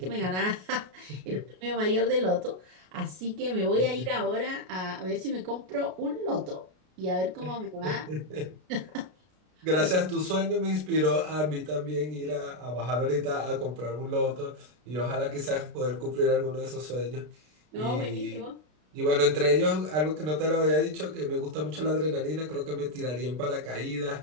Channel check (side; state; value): left; late; 33 ms